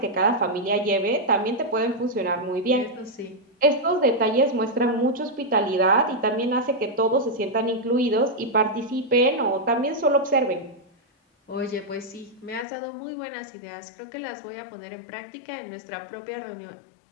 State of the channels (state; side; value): drops out; right; at 12.7 s